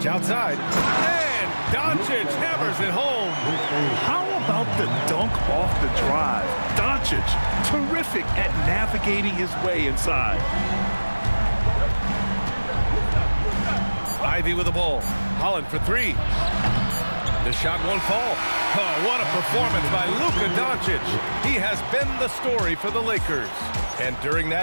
outside. And Doncic hammers it home. How about the dunk off the drive? Doncic, terrific at navigating his way inside. Ivy with the ball. Holland for 3. The shot won't fall. Oh, what a performance by Luka Doncic. He has been the story for the Lakers. And during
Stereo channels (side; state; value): both; inverted; correlation -1.00